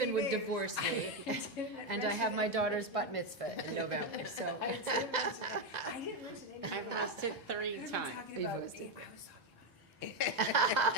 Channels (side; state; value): both; normal; correlation 0.06